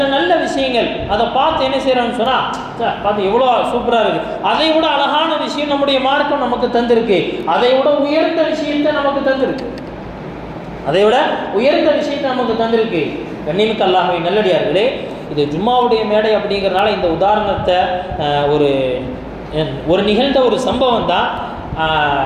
நல்ல விஷயங்கள் அதை பார்த்து என்ன செய்கிறோம்னு சொன்னால், பார்த்து எவ்வளோ சூப்பராக இருக்குது, அதை விட அழகான விஷயம் நம்முடைய மார்க்கம் நமக்கு தந்திருக்கு, அதை விட உயர்ந்த விஷயத்தை நமக்கு தந்திருக்கு, அதை விட உயர்ந்த விஷயத்தை நமக்கு தந்திருக்கு. கண்ணியமிக்க அல்லாஹ்வே நல்லடியார்களே, இது ஜும்மாவுடைய மேடை அப்படிங்கிறனால இந்த உதாரணத்தை ஒரு நிகழ்ந்த ஒரு சம்பவம் தான்.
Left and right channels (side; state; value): both; identical; correlation 1.00